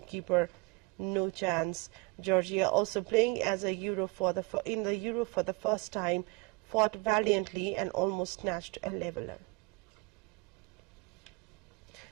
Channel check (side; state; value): left; quieter; 26.5 dB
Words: no chance. Georgia, also playing as in the Euro for the first time, fought valiantly and almost snatched a leveller.